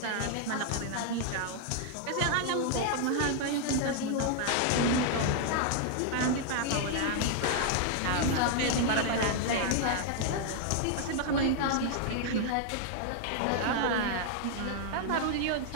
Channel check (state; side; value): different; both; correlation 0.00